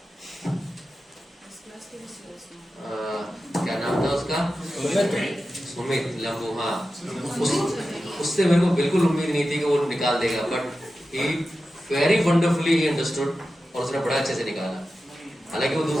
क्या नाम था उसका? सुमित लंबू। हाँ, उससे मेरे को बिल्कुल उम्मीद नहीं थी कि वो निकाल देगा, but he very wonderfully he understood, और उसने बड़ा अच्छे से निकाला। हालांकि वो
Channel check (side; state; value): both; normal; correlation 0.92